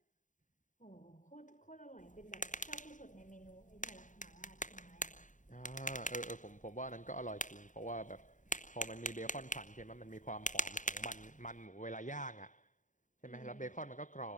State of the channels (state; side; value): late; right; 0.37 ms